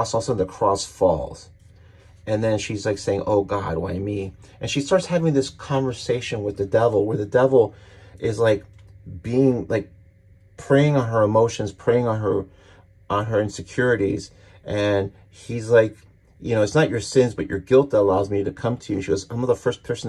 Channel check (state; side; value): identical; both; correlation 1.00